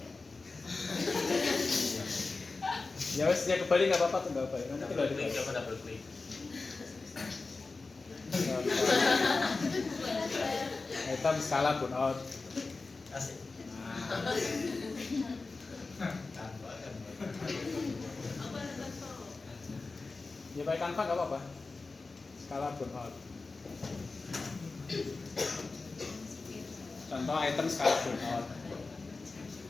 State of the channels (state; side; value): quieter; right; 3.8 dB